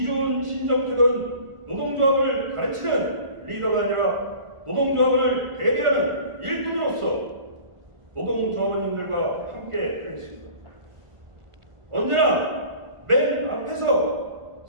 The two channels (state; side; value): late; left; 1.5 ms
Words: 신정택은 노동조합을 가르치는 리더가 아니라 노동조합을 대리하는 일꾼으로서 노동조합원님들과 함께 하겠습니다. 언제나 맨 앞에서